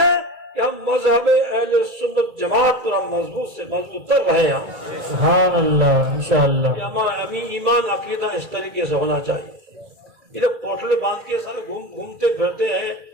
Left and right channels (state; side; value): late; left; 2.3 ms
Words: کہ ہم مذہب اہل سنت جماعت پر ہم مضبوط سے مضبوط تر رہے ہیں۔ سبحان اللہ، انشاءاللہ۔ ہمارا ایمان عقیدہ اس طریقے سے ہونا چاہیے۔ یہ لوگ پوٹلے باندھ کے سارے گھومتے پھرتے ہیں،